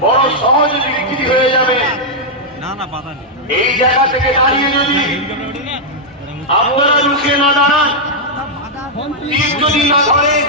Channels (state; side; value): normal; both; correlation -0.05